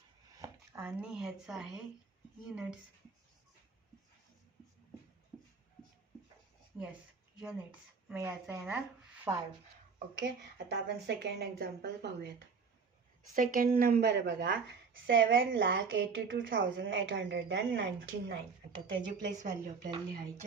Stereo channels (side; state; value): left; quieter; 5.3 dB